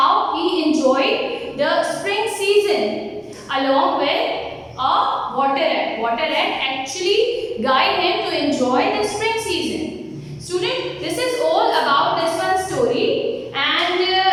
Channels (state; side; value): identical; both; correlation 1.00